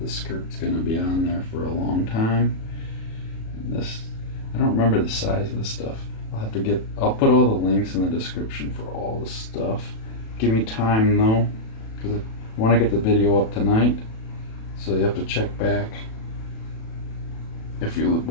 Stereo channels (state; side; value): late; right; 36 ms